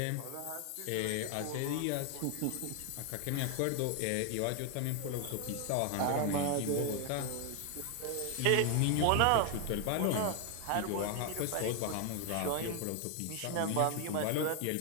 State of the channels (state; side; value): different; both; correlation 0.00